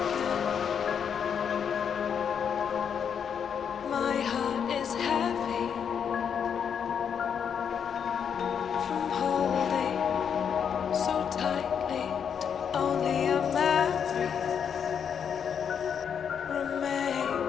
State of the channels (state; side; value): quieter; right; 7.5 dB